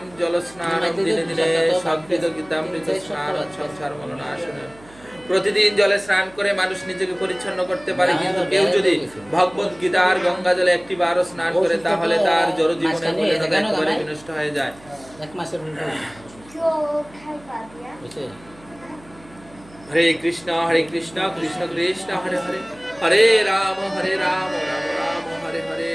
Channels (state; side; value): noise; right; hum, 24 dB below the sound